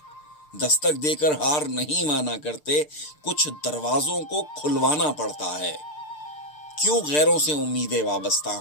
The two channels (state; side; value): late; right; 6.7 ms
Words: दस्तक देकर हार नहीं माना करते, कुछ दरवाजों को खुलवाना पड़ता है। क्यों गैरों से उम्मीदें वाबस्ता